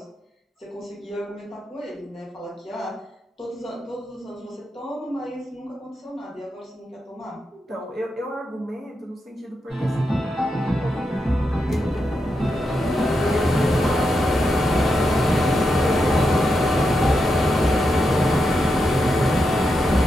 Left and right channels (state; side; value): normal; both; correlation 0.85